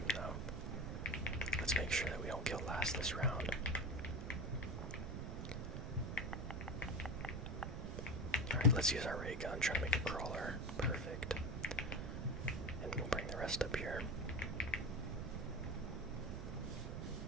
though. Let's make sure that we don't kill last this round. Alright, let's use our ray gun, try to make a crawler. Perfect. And we'll bring the rest up here.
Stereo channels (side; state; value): right; noise; rumble, 4 dB below the sound